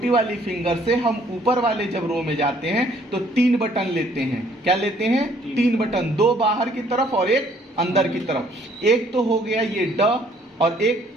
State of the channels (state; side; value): normal; both; correlation 0.62